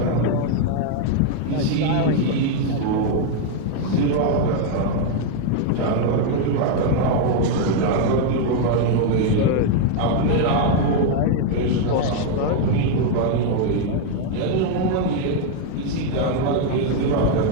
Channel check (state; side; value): different; both; correlation 0.01